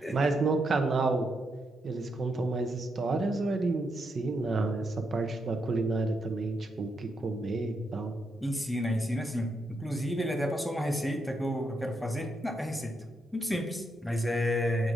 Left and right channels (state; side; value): normal; both; correlation 0.81